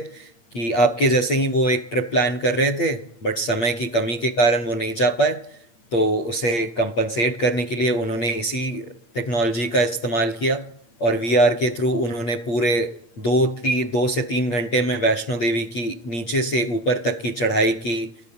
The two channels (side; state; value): right; late; 8.7 ms